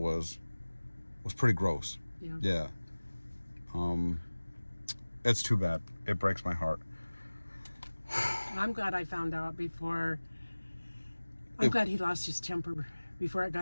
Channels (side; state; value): both; inverted; correlation -1.00